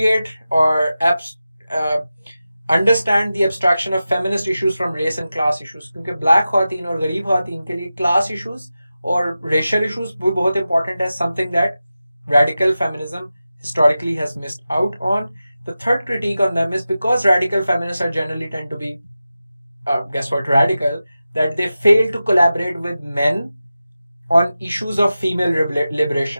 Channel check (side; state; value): both; inverted; correlation -0.93